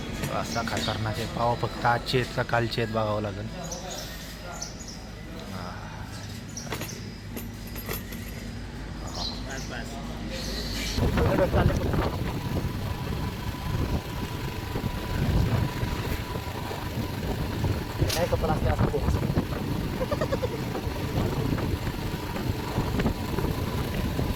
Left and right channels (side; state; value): both; identical; correlation 1.00